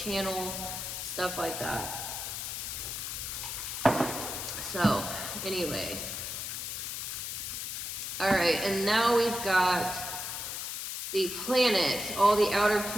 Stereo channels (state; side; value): noise; left; hiss, 5 dB below the sound